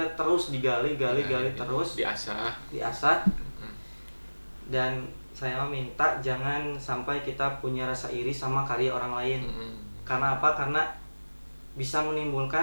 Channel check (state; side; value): inverted; both; correlation -1.00